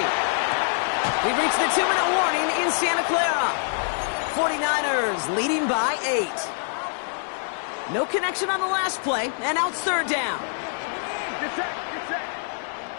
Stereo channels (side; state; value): right; silent; digital silence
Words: We've reached the 2-minute warning in Santa Clara. 49ers leading by 8. No connection on the last play, and now it's 3rd down. Get set, get set.